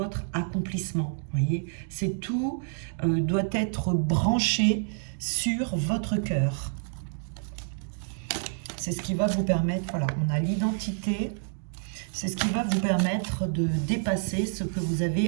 accomplissement. Voyez, c'est tout doit être branché sur votre cœur. C'est ce qui va vous permettre, voilà, on a l'identité, c'est ce qui va vous permettre de dépasser ce que vous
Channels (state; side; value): silent; left; 59 dB below the other